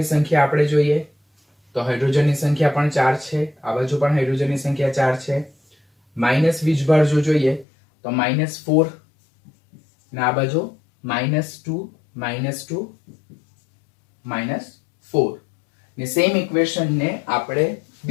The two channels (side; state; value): right; drops out; at 7.7 s